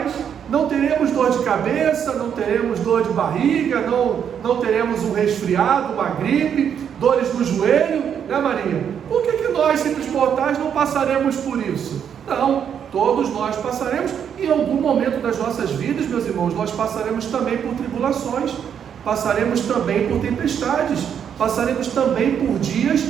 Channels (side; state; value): left; quieter; 8.3 dB